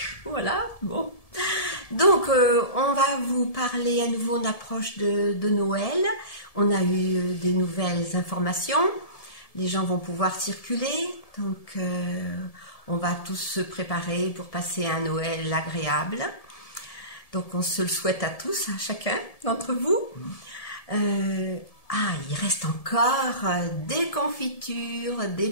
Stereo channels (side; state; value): right; late; 1.7 ms